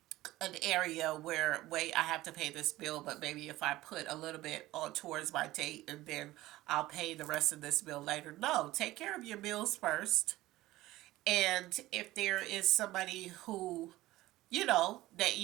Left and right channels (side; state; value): left; quieter; 17.0 dB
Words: an area where, wait, I have to pay this bill, but maybe if I put a little bit on towards my date, and then I'll pay the rest of this bill later. No, take care of your bills first. And if there is somebody who, that